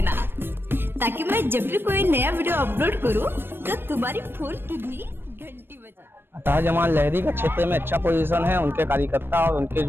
ताकि मैं जब भी कोई नया वीडियो अपलोड करूं तो तुम्हारी फोन की भी घंटी बजे। अतः जमाल लहरी का क्षेत्र में अच्छा पोजीशन है, उनके कार्यकर्ता और उनके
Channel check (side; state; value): left; late; 0.10 ms